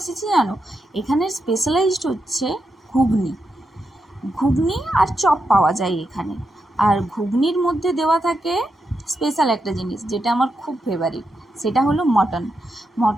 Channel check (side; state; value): both; normal; correlation 0.85